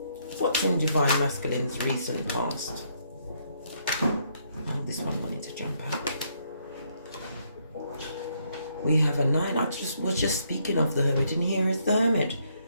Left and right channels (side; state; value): both; inverted; correlation -0.72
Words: What's in Divine Masculine's recent past. Oh, this one wanted to jump out. We have a 9. I was just speaking of the Hermit, and here is the Hermit.